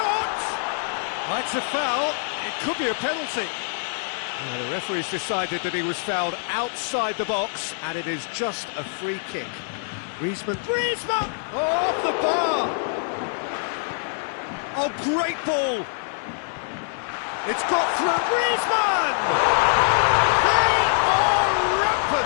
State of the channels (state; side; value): silent; right; digital silence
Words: That's a foul. It could be a penalty. Well, the referee's decided that he was fouled outside the box, and it is just a free kick. Griezmann. Griezmann! Oh, off the bar! Oh, great ball! It's got through. Griezmann! They are